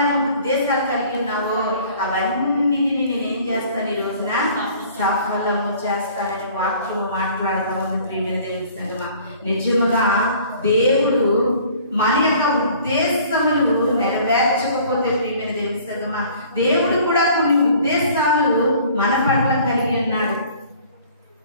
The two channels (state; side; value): inverted; both; correlation -0.52